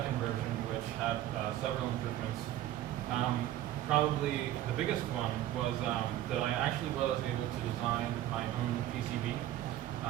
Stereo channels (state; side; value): quieter; left; 13.3 dB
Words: version which had several improvements. Probably the biggest one was that I actually was able to design my own PCB